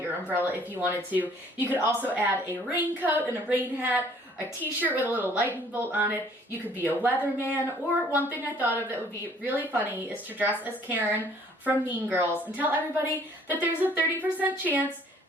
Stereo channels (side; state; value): both; normal; correlation 0.58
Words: your umbrella if you wanted to. You could also add a raincoat and a rain hat, a t-shirt with a little lightning bolt on it. You could be a weatherman, or one thing I thought of that would be really funny is to dress as Karen from Mean Girls and tell everybody that there's a 30% chance